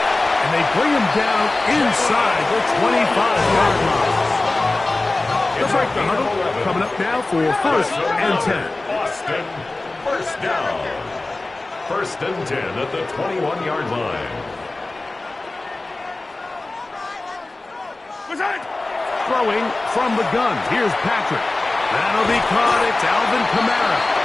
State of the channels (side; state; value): right; quieter; 3.0 dB